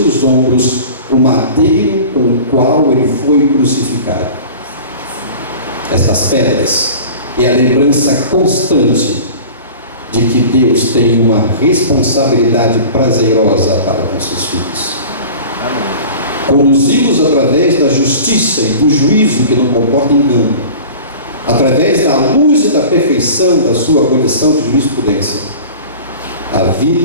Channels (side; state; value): both; inverted; correlation -0.40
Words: ombros o madeiro com o qual ele foi crucificado. Essas pedras é a lembrança constante de que Deus tem uma responsabilidade prazerosa para com seus filhos. Conduzi-los através da justiça e do juízo que não comporta engano, através da luz e da perfeição da sua condição de jurisprudência, a